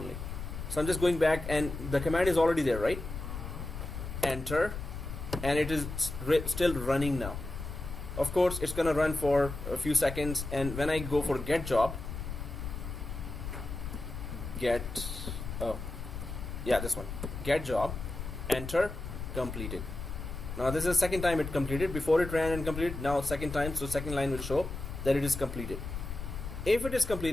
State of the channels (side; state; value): left; noise; rumble, 7 dB below the sound